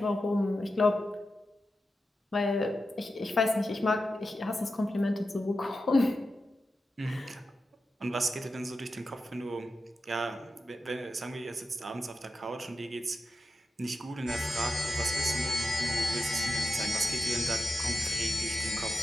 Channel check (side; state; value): both; normal; correlation 0.90